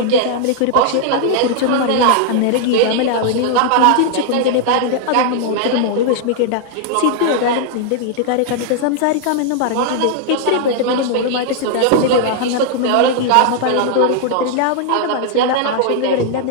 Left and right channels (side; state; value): both; different; correlation 0.00